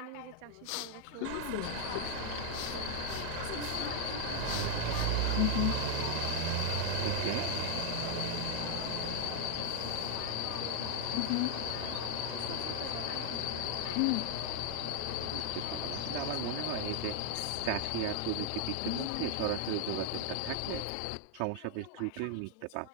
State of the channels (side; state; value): both; different; correlation 0.00